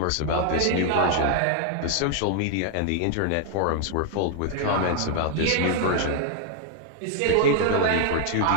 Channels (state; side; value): different; both; correlation 0.00